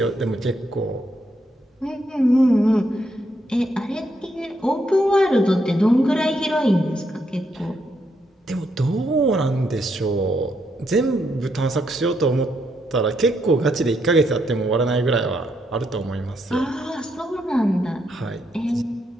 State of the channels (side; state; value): both; normal; correlation 0.77